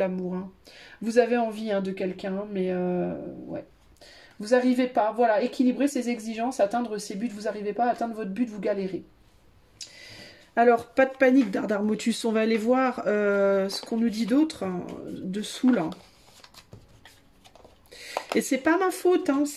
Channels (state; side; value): identical; both; correlation 1.00